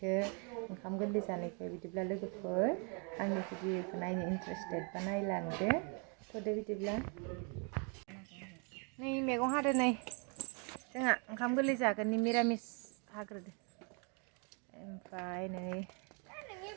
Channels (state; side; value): quieter; left; 36.1 dB